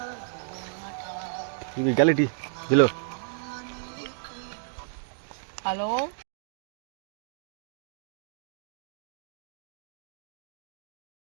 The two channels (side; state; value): left; silent; digital silence